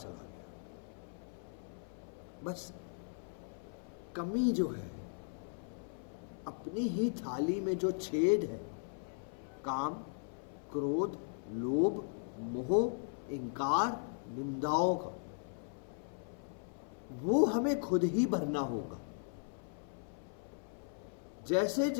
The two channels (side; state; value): right; silent; 52 dB below the other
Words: गया, बस कमी जो है, अपनी ही थाली में जो छेद है, काम, क्रोध, लोभ, मोह, इंकार, निंदाओं का, वो हमें खुद ही भरना होगा। जैसे